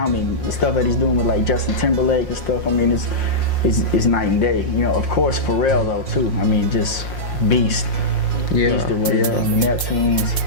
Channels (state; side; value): late; right; 5.6 ms